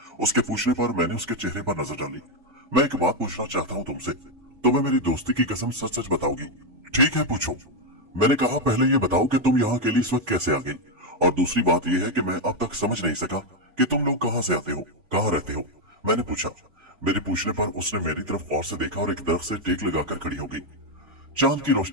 उसके पूछने पर मैंने उसके चेहरे पर नजर डाली। मैं एक बात पूछना चाहता हूँ तुमसे। तुम्हें मेरी दोस्ती की कसम सच सच बताओगी? ठीक है, पूछो। मैंने कहा, पहले ये बताओ कि तुम यहाँ अकेली इस वक्त कैसे आ गई, और दूसरी बात यह है कि मैं अब तक समझ नहीं सका कि तुम लोग कहाँ से आते हो, कहाँ रहते हो, मैंने पूछा। मेरे पूछने पर उसने मेरी तरफ गौर से देखा और एक दरख्त से टेक लगाकर खड़ी हो गई। चांद की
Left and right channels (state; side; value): late; left; 3.5 ms